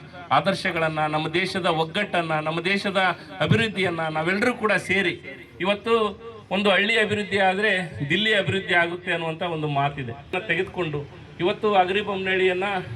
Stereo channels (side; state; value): both; identical; correlation 1.00